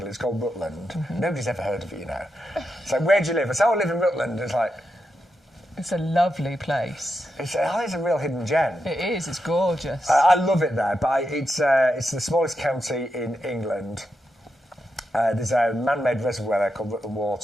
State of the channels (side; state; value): both; normal; correlation 0.86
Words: It's called Rutland. Nobody's ever heard of it, you know. It's like, where do you live? I say, I live in Rutland. It's like, it's a lovely place. It's a real hidden gem. It is. It's gorgeous. I love it there, but it's the smallest county in England. There's a man-made reservoir there called Rutland